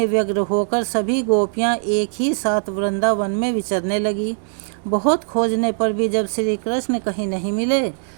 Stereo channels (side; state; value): left; silent; digital silence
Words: व्यग्र होकर सभी गोपियां एक ही साथ वृंदावन में विचरने लगी। बहुत खोजने पर भी जब श्री कृष्ण कहीं नहीं मिले,